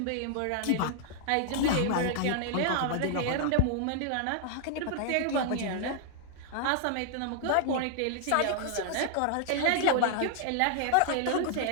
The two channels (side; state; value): both; different; correlation -0.01